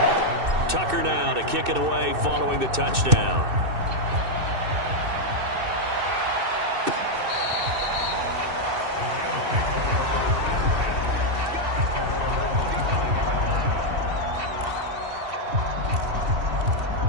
Tucker now to kick it away following the touchdown.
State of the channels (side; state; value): left; late; 2.6 ms